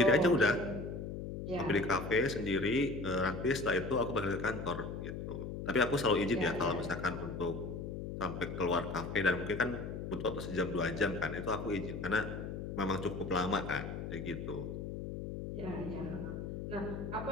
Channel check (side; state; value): left; noise; hum, 6 dB below the sound